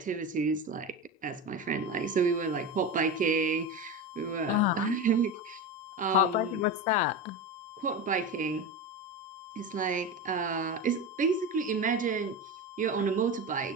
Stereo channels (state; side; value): normal; both; correlation 0.22